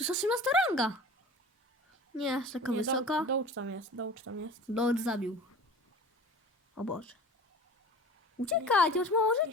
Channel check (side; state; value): both; normal; correlation 0.40